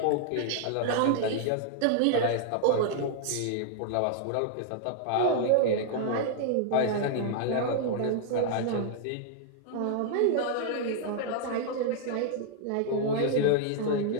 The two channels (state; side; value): different; both; correlation -0.01